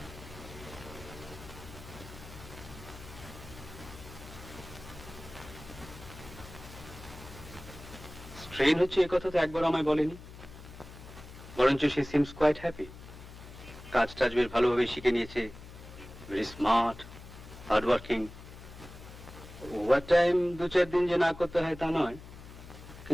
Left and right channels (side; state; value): left; noise; hum, 16 dB below the sound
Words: স্ট্রেন হচ্ছে এ কথা তো একবার আমায় বলেনি, বরঞ্চ সে সিমস কোয়াইট হ্যাপি। কাজ টাজ বেশ ভালোভাবে শিখে নিয়েছে, very smart, hard working. Over time 2-4 দিন যে না করতে হয় তা নয়,